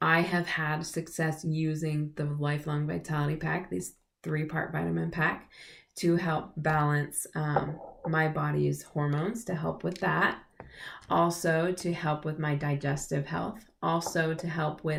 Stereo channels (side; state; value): both; identical; correlation 1.00